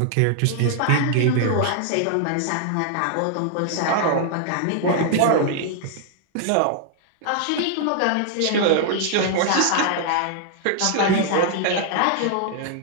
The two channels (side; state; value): both; different; correlation 0.00